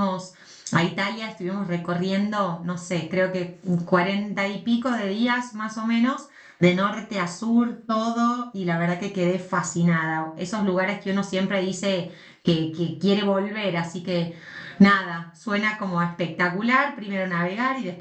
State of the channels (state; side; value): identical; both; correlation 1.00